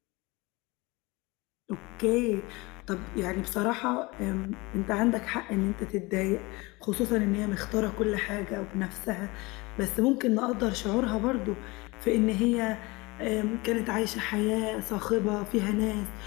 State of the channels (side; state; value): right; quieter; 23.8 dB